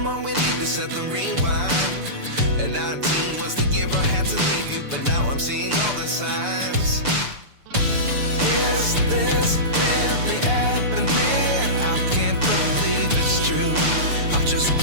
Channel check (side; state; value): left; late; 6.9 ms